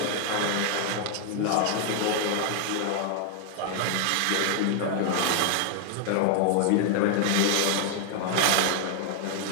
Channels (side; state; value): both; different; correlation 0.00